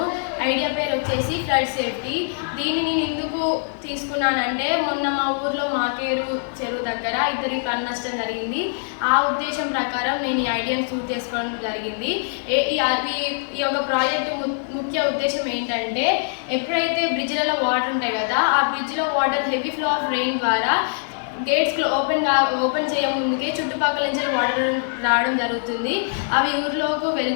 ఐడియా పేరు వచ్చేసి ఫ్లడ్ సేఫ్టీ. దీన్ని నేను ఎందుకు తీసుకున్నానంటే మొన్న మా ఊర్లో మాకేరు చెరువు దగ్గర ఇద్దరికి ప్రాణ నష్టం జరిగింది. ఆ ఉద్దేశం ప్రకారం నేను ఈ ఐడియాని చూస్ చేసుకోవడం జరిగింది. ఈ యొక్క ప్రాజెక్టు ముఖ్య ఉద్దేశం ఏంటంటే ఎప్పుడైతే బ్రిడ్జ్లలో వాటర్ ఉంటాయి కదా, ఆ బ్రిడ్జ్లో water heavy flow of rain ద్వారా గేట్స్ ఓపెన్ చేయముందుకే చుట్టుపక్కల నుంచి వాటర్ రావడం జరుగుతుంది. అవి ఊర్లోకి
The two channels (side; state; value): right; silent; digital silence